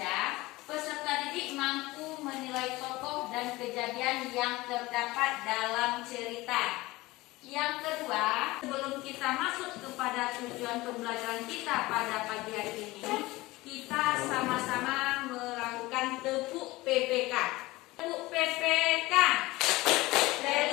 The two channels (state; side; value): quieter; right; 20.0 dB